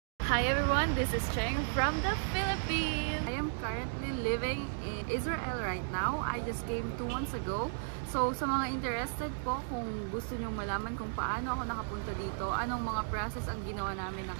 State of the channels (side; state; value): left; silent; digital silence